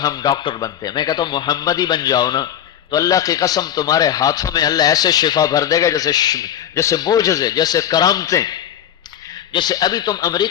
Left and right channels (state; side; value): quieter; right; 10.5 dB